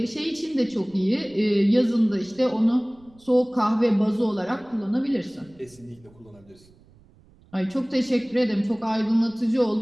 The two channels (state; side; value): noise; right; rumble, 28 dB below the sound